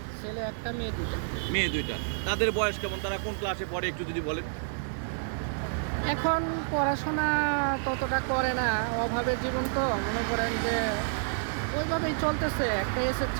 ছেলে 1টা, মেয়ে 2টা। মেয়ে 2টা। তাদের বয়স কেমন, তারা কোন ক্লাসে পড়ে একটু যদি বলেন। এখন পড়াশোনা ততটা করে না, অভাবের জীবন তো, মনে করেন যে ওইভাবেই চলতেছে। একটা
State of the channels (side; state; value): left; silent; digital silence